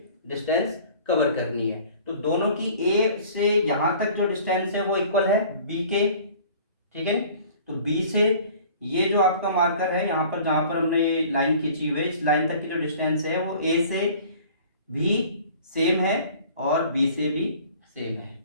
डिस्टेंस कवर करनी है। तो दोनों की ए से यहां तक जो डिस्टेंस है वो इक्वल है बी के, ठीक है। तो बी से ये जो आपका मार्कर है यहाँ पर, जहां पर हमने ये लाइन खींची हुई है, इस लाइन तक की जो डिस्टेंस है वो ए से भी सेम है और बी से भी सेम है,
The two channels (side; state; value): both; inverted; correlation -0.48